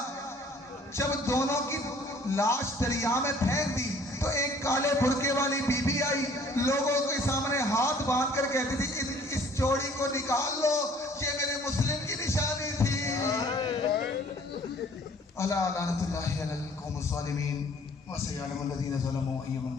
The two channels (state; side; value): normal; both; correlation 0.55